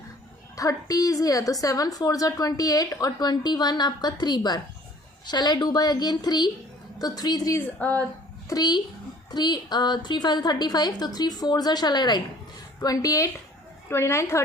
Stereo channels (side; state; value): both; normal; correlation 0.53